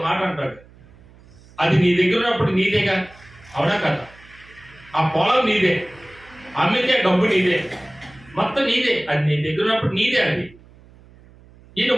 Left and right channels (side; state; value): right; noise; hum, 25 dB below the sound